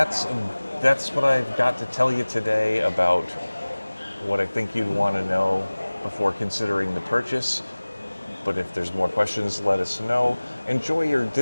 what I've got to tell you today about what I think you'd want to know before considering the purchase. But if there's more questions, let us know. Enjoy your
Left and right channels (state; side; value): inverted; both; correlation -1.00